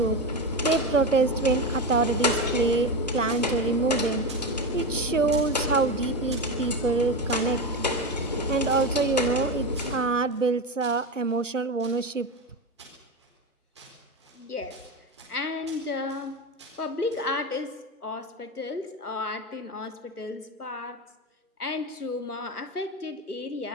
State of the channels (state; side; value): normal; both; correlation 0.19